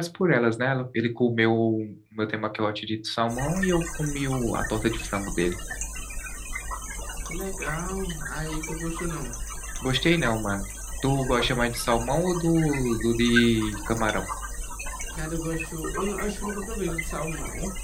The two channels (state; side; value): identical; both; correlation 1.00